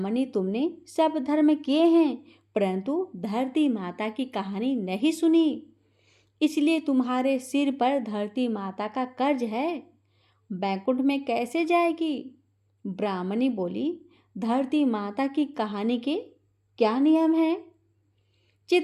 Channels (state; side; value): identical; both; correlation 1.00